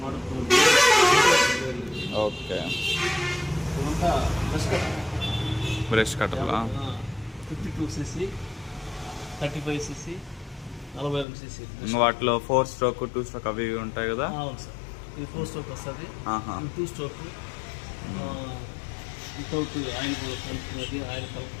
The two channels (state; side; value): drops out; right; at 11.2 s